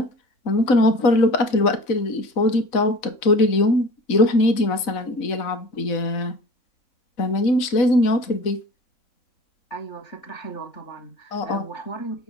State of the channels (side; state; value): right; late; 4.0 ms